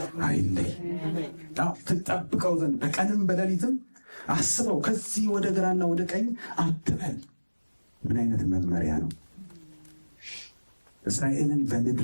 አይለይ፣ ትጠብቀው ዘንድ በቀንም በሌሊትም አስበው፣ ከዚህ ወደ ግራና ወደ ቀኝ አትበል። ምን አይነት መመሪያ ነው! እስራኤልን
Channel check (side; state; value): both; inverted; correlation -1.00